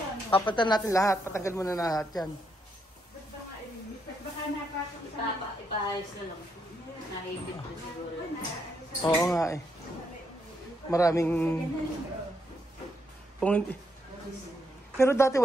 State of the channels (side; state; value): both; normal; correlation 0.78